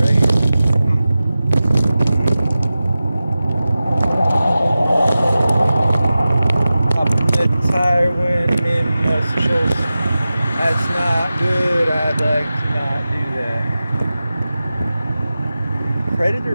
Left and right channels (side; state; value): both; inverted; correlation -0.95